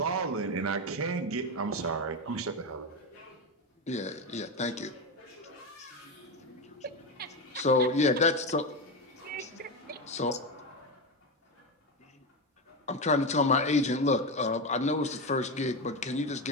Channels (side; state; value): both; normal; correlation 0.14